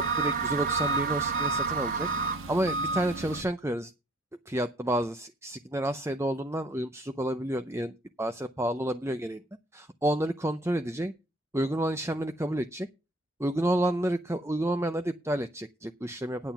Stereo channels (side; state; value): both; normal; correlation 0.58